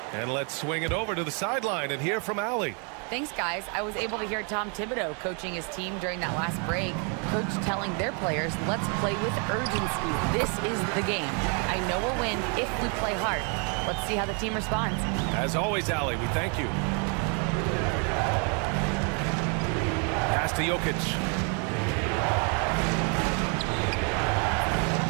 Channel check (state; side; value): quieter; left; 37.6 dB